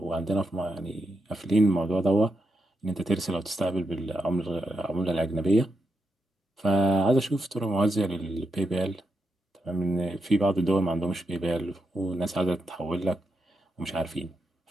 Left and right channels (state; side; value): normal; both; correlation 0.84